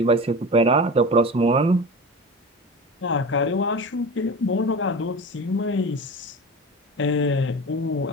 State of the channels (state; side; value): normal; both; correlation 0.30